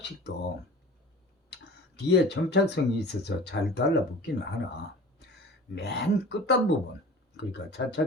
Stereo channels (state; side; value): normal; both; correlation 0.41